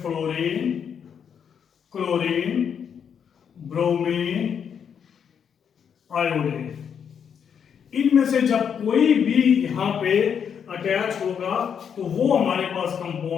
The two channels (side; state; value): right; quieter; 7.6 dB